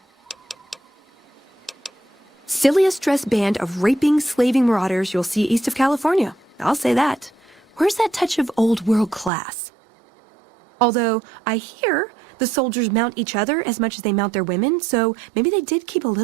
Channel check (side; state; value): left; drops out; at 9.3 s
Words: Silliest dressed band of raping, slaving marauders you'll see east of California. I'll say that. Where's that touch of old world class? Although, I hear the soldiers mount each other as much as they mount their women, so maybe they did keep a